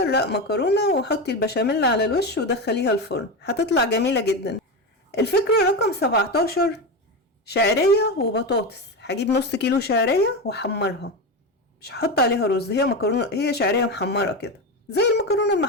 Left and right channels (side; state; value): both; normal; correlation 0.18